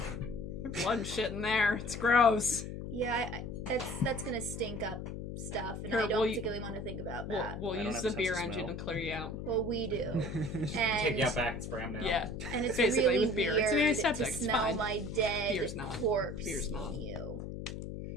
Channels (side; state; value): left; noise; hum, 7 dB below the sound